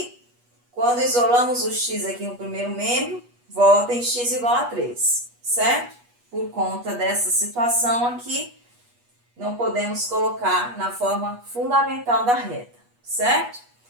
quando isolamos o x aqui no primeiro membro, volta em x igual a 3, certo? Por conta dessa situação aqui, não podemos colocar na forma fundamental da reta, certo?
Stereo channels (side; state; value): left; late; 8.3 ms